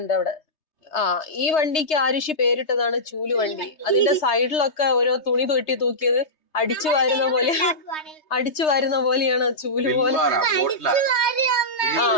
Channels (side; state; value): right; late; 3.2 ms